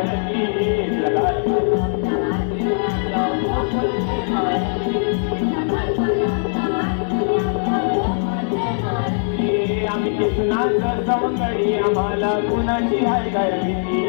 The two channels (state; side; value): silent; right; digital silence